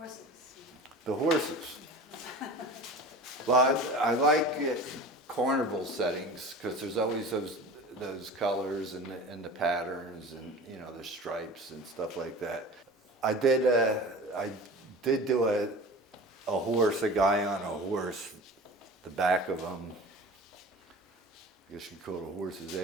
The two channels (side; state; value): both; normal; correlation 0.37